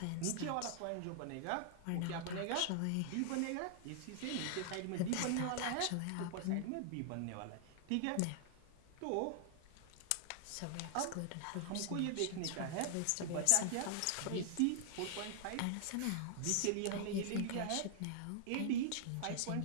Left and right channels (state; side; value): different; both; correlation -0.01